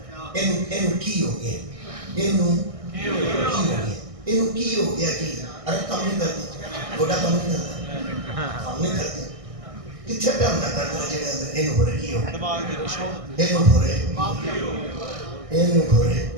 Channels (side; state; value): left; late; 1.6 ms